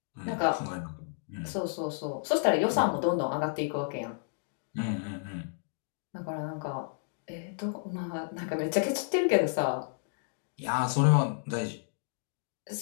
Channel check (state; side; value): silent; right; digital silence